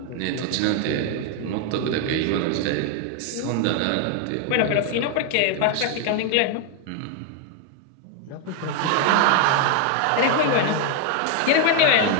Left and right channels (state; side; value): different; both; correlation 0.00